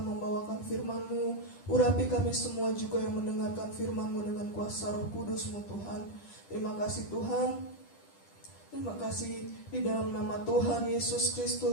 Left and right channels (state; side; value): late; right; 10 ms